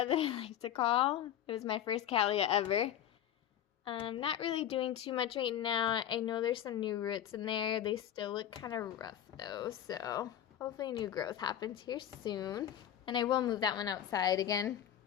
that I like to call. It was my first cattleya ever. Not really doing too much right now. I know there's some new roots in there. They still look kind of rough though, so hopefully new growth happens here soon. And I will move that one outside again.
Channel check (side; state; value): right; quieter; 10.6 dB